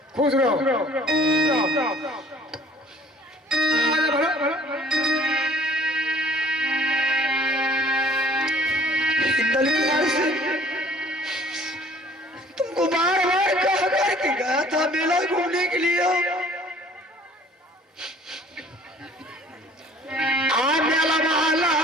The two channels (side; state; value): both; normal; correlation 0.53